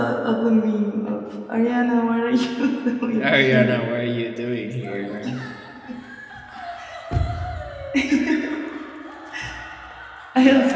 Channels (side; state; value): both; identical; correlation 1.00